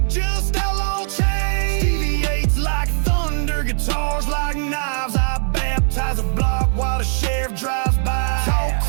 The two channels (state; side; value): silent; left; 55 dB below the other